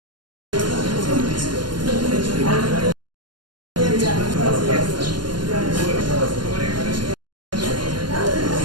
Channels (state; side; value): late; left; 0.71 ms